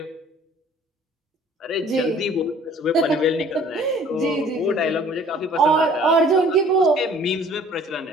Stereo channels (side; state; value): both; normal; correlation 0.53